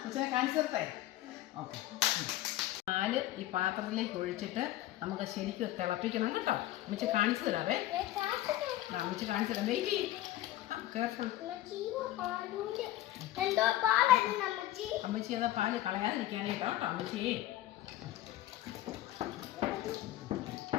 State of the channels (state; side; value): quieter; right; 15.0 dB